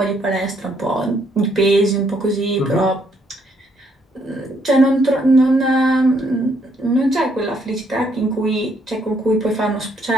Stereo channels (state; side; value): normal; both; correlation 0.71